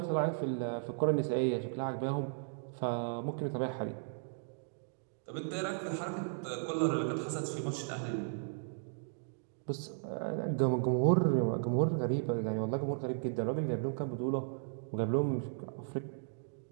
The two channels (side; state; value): left; silent; digital silence